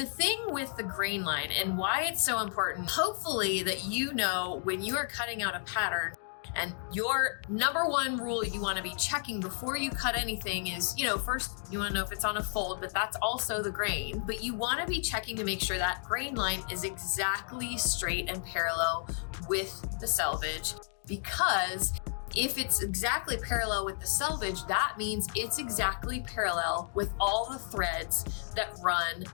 thing with the Grainline and why it's so important, hopefully that you know when you are cutting out a pattern, and your number one rule you want to be checking before you cut anything is, first you want to know if it's on a fold, but that's also the grain. But you want to be checking to make sure that grain line is exactly straight and parallel with the selvage, because if it's exactly parallel with the selvage, that means it's exactly parallel with all the threads that run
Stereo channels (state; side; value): silent; right; digital silence